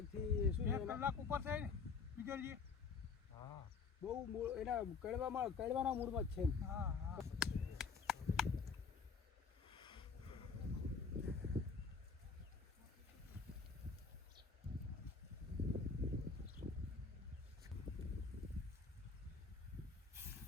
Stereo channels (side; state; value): right; quieter; 5.2 dB